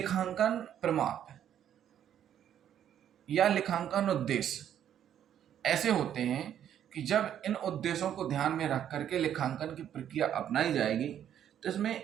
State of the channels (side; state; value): left; quieter; 10.0 dB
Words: प्रमाप या लेखांकन उद्देश्य ऐसे होते हैं कि जब इन उद्देश्यों को ध्यान में रख करके लेखांकन की प्रक्रिया अपनाई जाएगी तो इसमें